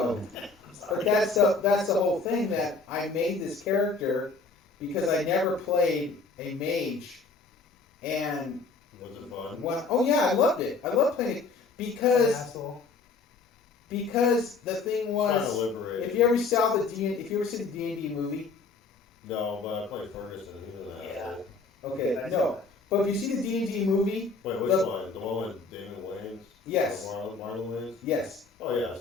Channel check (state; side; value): quieter; right; 4.2 dB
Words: but that's the whole thing, that I made this character because I never played a mage, and Was it fun? oh yeah, I loved it. I loved playing it because the thing was, Liberating. if you ever saw the D&D movie, No, but I played Ferguson. He was an asshole. okay, no, but you see the D&D movie, Wait, which one? The one with Damon Wayans? Yes. Marlon Wayans? yes, Oh yeah,